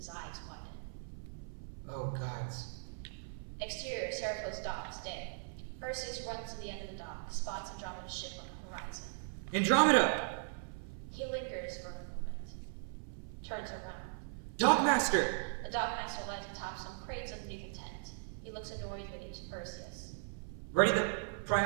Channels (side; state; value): left; silent; 52 dB below the other